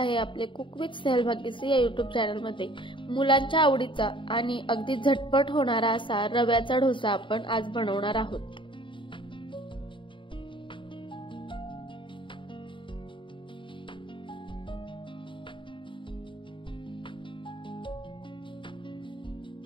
आपले कुक विथ स्नेहल भाग्यश्री या यूट्यूब चॅनलमध्ये। मुलांच्या आवडीचा आणि अगदी झटपट होणारा असा रव्याचा डोसा आपण आज बनवणार आहोत।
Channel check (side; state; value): right; late; 0.24 ms